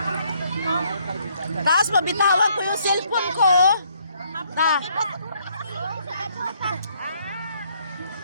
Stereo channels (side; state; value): both; inverted; correlation -0.68